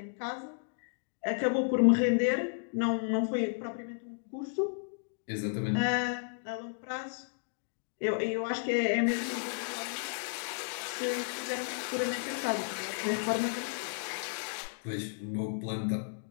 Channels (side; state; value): right; silent; digital silence